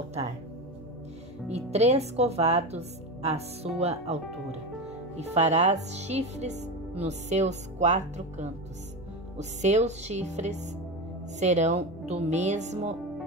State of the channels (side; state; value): both; normal; correlation 0.21